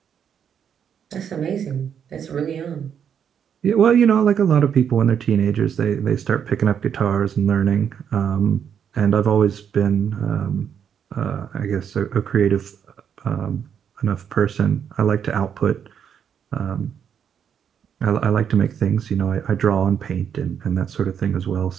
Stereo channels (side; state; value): left; quieter; 8.1 dB